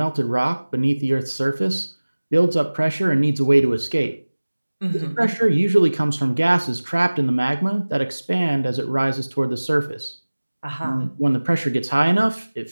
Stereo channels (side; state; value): both; inverted; correlation -1.00